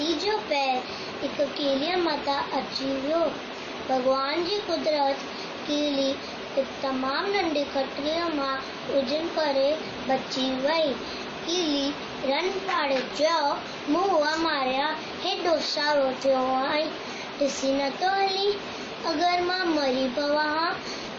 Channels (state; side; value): identical; both; correlation 1.00